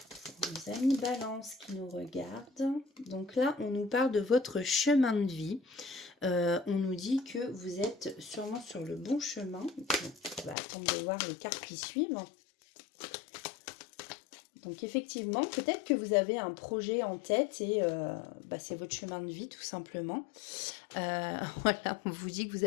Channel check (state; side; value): drops out; right; at 10.6 s